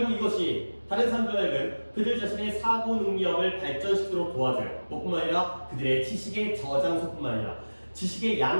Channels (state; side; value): inverted; both; correlation -1.00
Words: 이것이 다른 사람들에게는 그들 자신의 사고 능력을 발전시키도록 도와줘요. 뿐만 아니라 그들의 지식의 저장소뿐만 아니라 지식의